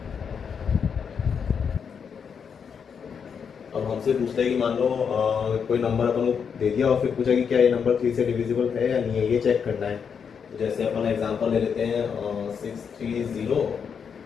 अब हमसे पूछता है कि मान लो कोई नंबर अपन को दे दिया और फिर पूछा कि क्या ये नंबर 3 से डिविजिबल है या नहीं है, ये चेक करना है। तो जैसे अपन एग्जांपल ले लेते हैं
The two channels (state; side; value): quieter; right; 6.8 dB